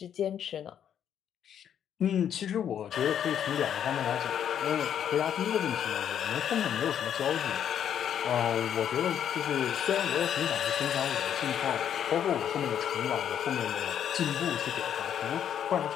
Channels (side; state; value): right; quieter; 9.3 dB